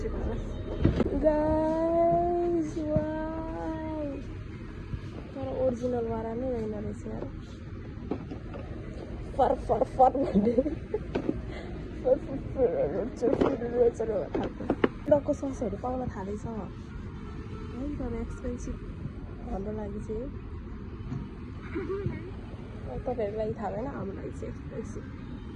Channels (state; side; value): identical; both; correlation 1.00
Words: गाइस वाउ तर ओरिजिनल वाला नै रहेन रहेछ यार फर भन्दै डक्को ससहरू पाउन थालेछ है तर एक्सपेन्सिभ हाम्रो लागि चाहिँ तपाईँहरूलाई थाहा भएन हाम्रो लागि चाहिँ एक्सपेन्सिभ